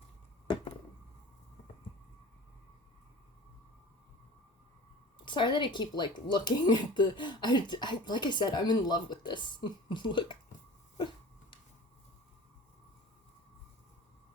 Sorry that I keep, like, looking at the... I like I said, I'm in love with this. Look.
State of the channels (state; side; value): normal; both; correlation 0.40